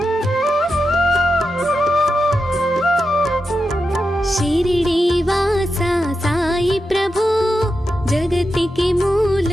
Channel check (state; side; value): normal; both; correlation 0.89